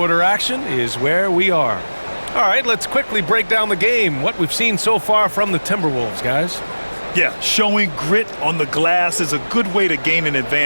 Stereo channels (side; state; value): both; inverted; correlation -1.00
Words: action is where we are. All right, let's quickly break down the game, what we've seen so far from the Timberwolves, guys. Yeah, showing grit on the glass is a good way to gain an